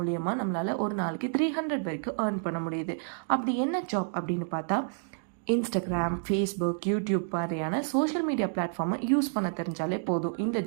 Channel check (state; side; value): silent; left; digital silence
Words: நம்மளால் ஒரு நாளைக்கு 300 வரைக்கும் ஏர்ன் பண்ண முடியுது. அப்படி என்ன ஜாப் அப்படின்னு பார்த்தா, இன்ஸ்டாகிராம், ஃபேஸ்புக், யூடியூப் மாதிரியான சோஷியல் மீடியா பிளாட்ஃபார்மை யூஸ் பண்ண தெரிஞ்சாலே போதும். இந்த